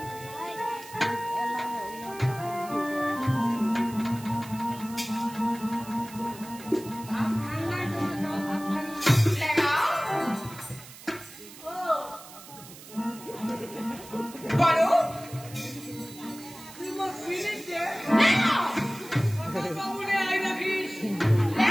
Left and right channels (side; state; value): right; noise; hiss, 17 dB below the sound